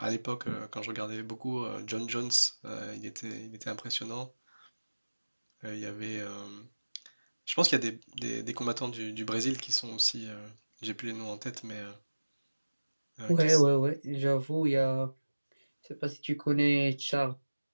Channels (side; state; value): both; inverted; correlation -1.00